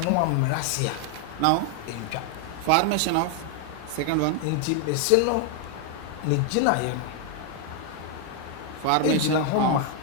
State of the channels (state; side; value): different; both; correlation 0.01